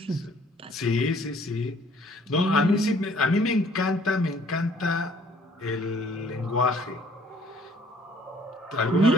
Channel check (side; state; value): both; normal; correlation 0.59